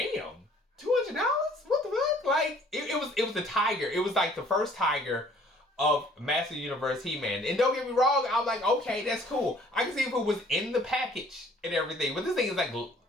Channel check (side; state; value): both; normal; correlation 0.57